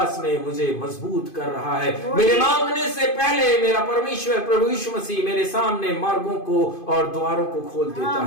में मुझे मजबूत कर रहा है। मेरे मांगने से पहले मेरा परमेश्वर प्रभु यीशु मसीह मेरे सामने मार्गों को और द्वारों को खोल देता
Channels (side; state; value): right; late; 2.5 ms